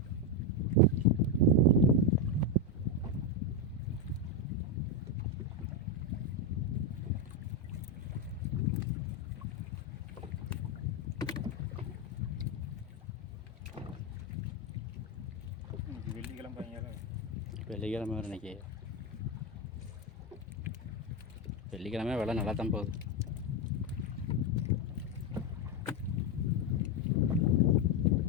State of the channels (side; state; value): both; normal; correlation 0.06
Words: வெள்ளிக்கிழமை வரும் இன்றைக்கி. வெள்ளிக்கிழமை விலை நல்லா தான் போகுது.